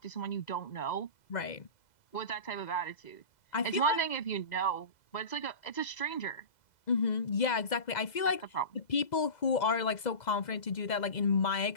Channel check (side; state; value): right; late; 2.0 ms